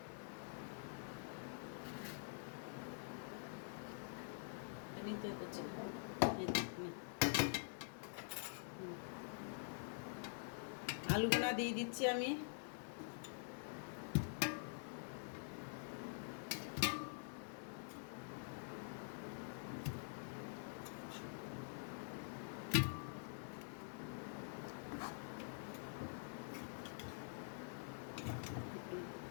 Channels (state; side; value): silent; right; digital silence